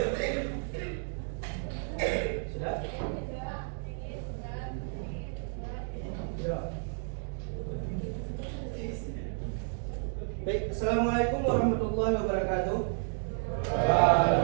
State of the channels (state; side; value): silent; left; digital silence